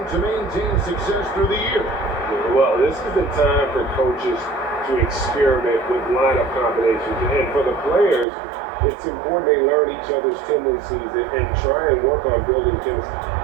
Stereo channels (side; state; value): left; drops out; at 8.2 s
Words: maintain success through the year? Well, this is the time for coaches to experiment with lineup combinations. And for the players, it's important they learn each other's tendencies and try and work on building chemistry.